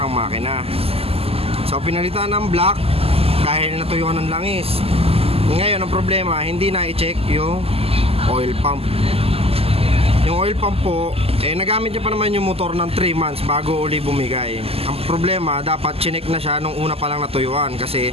makina. So pinalitan ng black dahil natuyuan ng langis. Ngayon ang problema, hindi na i-check yung oil pump. Yung oil pump po, nagamit niya pa naman yung motor ng 3 months bago uli bumigay. Ang problema, dapat chinek na siya nung una pa lang natuyuan kasi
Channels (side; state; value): left; late; 0.29 ms